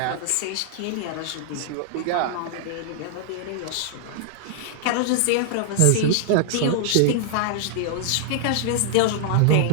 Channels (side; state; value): both; different; correlation -0.01